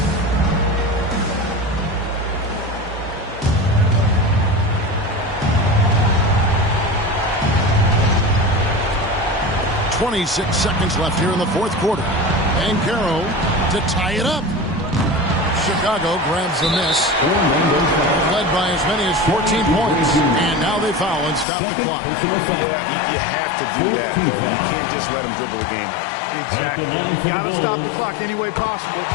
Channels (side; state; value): right; drops out; at 21.5 s